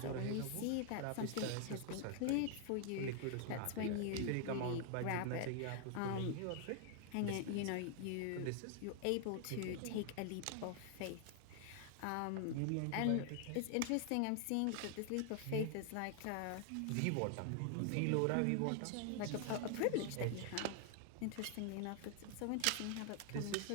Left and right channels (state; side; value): different; both; correlation 0.00